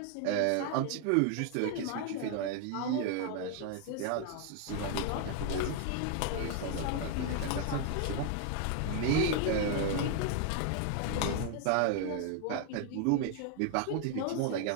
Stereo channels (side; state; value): both; different; correlation 0.00